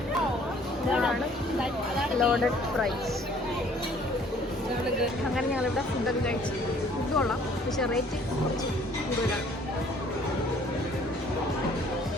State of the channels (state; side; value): normal; both; correlation 0.58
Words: ഇതാണ് ലോഡഡ് ഫ്രൈസ്. അങ്ങനെ ഞങ്ങളിവിടെ ഫുഡൊക്കെ കഴിച്ചു. ഫുഡ് കൊള്ളാം, പക്ഷെ റേറ്റ് കുറച്ച് കൂടുതലാണ്.